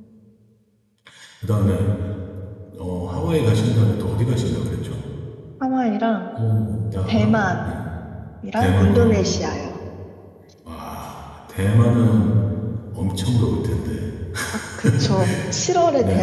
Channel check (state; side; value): identical; both; correlation 1.00